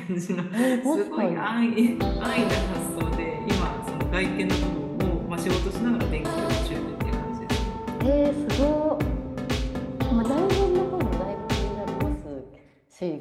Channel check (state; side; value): identical; both; correlation 1.00